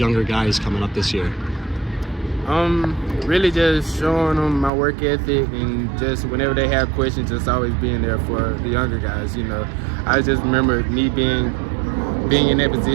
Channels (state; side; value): drops out; left; at 4.7 s